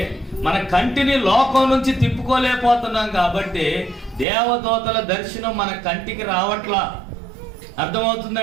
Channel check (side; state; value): left; drops out; at 4.2 s